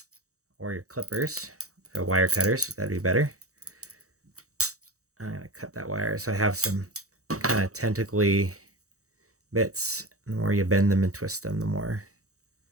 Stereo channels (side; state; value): left; late; 0.65 ms